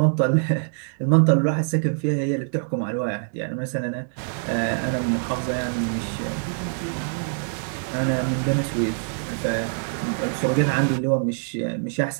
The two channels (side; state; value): left; silent; digital silence